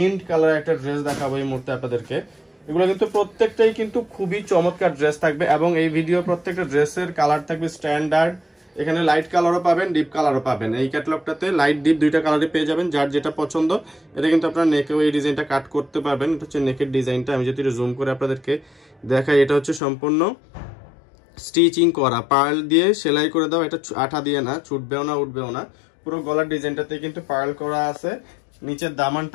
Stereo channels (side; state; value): right; drops out; at 19.8 s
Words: কালার একটা ড্রেস দেখাবো এই মুহূর্তে আপনাদেরকে। এগুলো কিন্তু প্রত্যেকটাই কিন্তু খুবই চমৎকার ড্রেস থাকবে। এবং এই ভিডিও প্রত্যেকটা ড্রেসের কালার থাকবে স্ট্যান্ডার্ড। এখানে লাইট কালারও পাবেন, ডিপ কালারও পাবেন। এই ক্যাটালগটাতে লাইট ডিপ দুইটা কালারই পেয়ে যাবেন, যার যেটা পছন্দ। এটা কিন্তু আপনার নেকেও এই ডিজাইনটা কাট করতে পারবেন। এটা হচ্ছে নেকের ডিজাইনটা। আমি যদি জুম করে আপনাদেরকে দেখাই, এটা হচ্ছে সম্পূর্ণ স্টিচিং করা, পার্ল দিয়ে সেলাই করে দাও। এটা আঠা দিয়ে না, ছুটবেও না, উঠবেও না। পুরো গলার ডিজাইনটাতে কিন্তু পার্ল করা আছে। নিচের